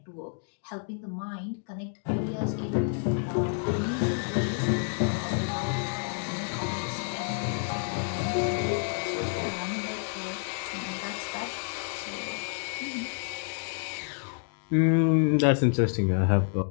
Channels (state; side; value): silent; right; 58 dB below the other